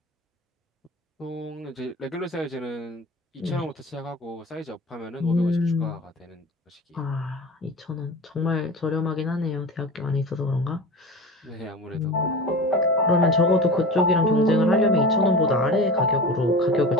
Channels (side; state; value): both; normal; correlation 0.33